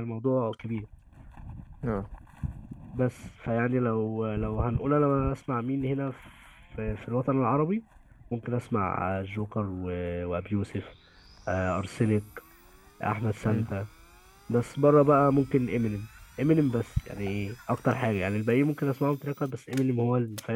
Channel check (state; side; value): identical; both; correlation 1.00